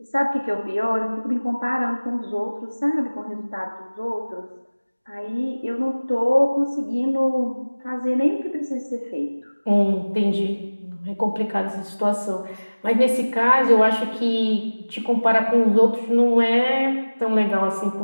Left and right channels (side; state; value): both; inverted; correlation -1.00